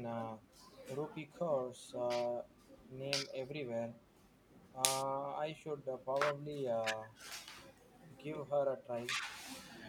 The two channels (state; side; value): identical; both; correlation 1.00